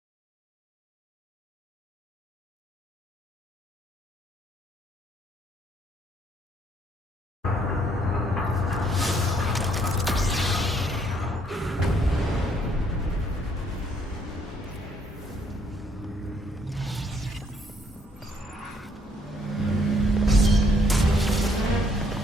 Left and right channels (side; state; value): both; normal; correlation 0.68